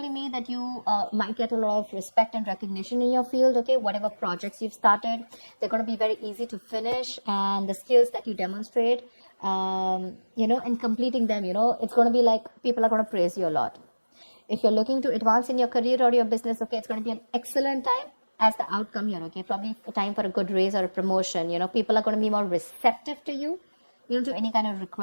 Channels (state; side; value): inverted; both; correlation -1.00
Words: me that you might get a lot of respect and recognition in your field, okay? Whatever projects you've started, they're going to be very easy to finish, and the skills that you demonstrate and completing them, it's going to be like people are going to praise you a lot. If you're looking to advance in your career or your business, okay, it's going to be an excellent time as the outcome here, okay? Probably a time for a good raise or a promotion. People are going to be more receptive to you, to any kind of